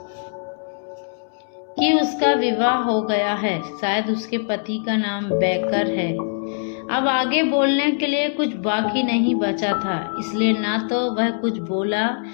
कि उसका विवाह हो गया है। शायद उसके पति का नाम बेकर है। अब आगे बोलने के लिए कुछ बाकी नहीं बचा था, इसलिए ना तो वह कुछ बोला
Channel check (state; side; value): silent; right; 64 dB below the other